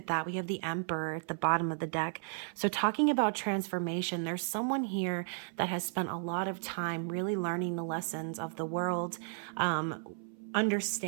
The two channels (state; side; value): silent; left; 55 dB below the other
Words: that. We have the Emperor at the bottom of the deck. So talking about transformation, there's someone here that has spent a lot of time really learning the lessons of the world,